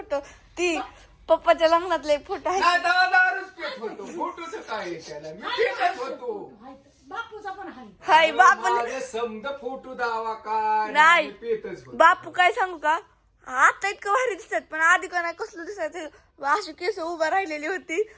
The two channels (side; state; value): both; identical; correlation 1.00